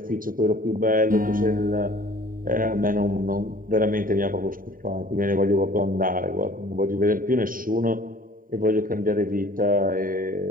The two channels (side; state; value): left; late; 0.41 ms